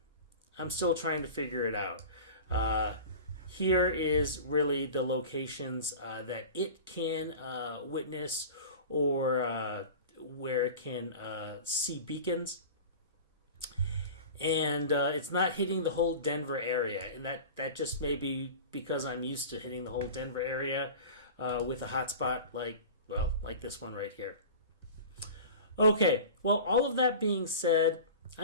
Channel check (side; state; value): both; inverted; correlation -0.35